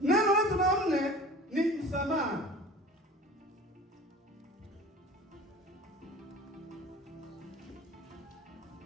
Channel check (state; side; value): normal; both; correlation 0.42